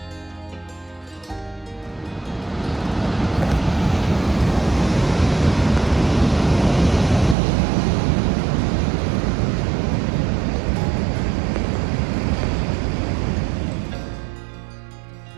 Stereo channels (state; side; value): drops out; left; at 7.4 s